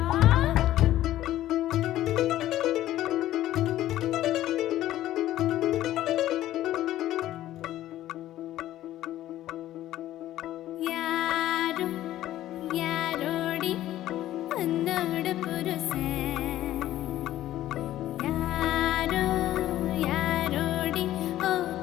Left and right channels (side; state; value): right; quieter; 13.8 dB